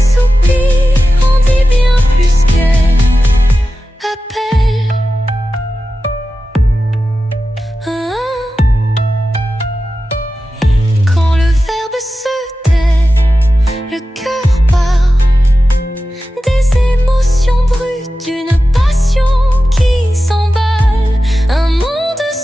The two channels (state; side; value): normal; both; correlation 0.93